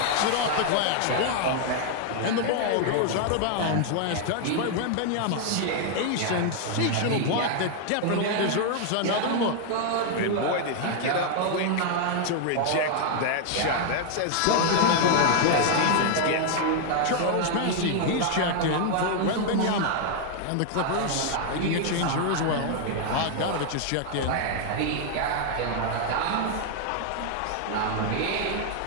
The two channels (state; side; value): different; both; correlation 0.00